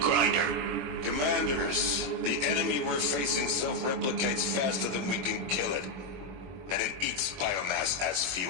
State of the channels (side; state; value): left; late; 21 ms